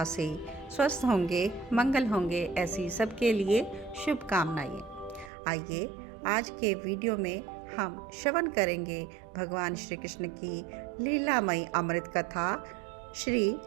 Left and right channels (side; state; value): left; drops out; at 5.3 s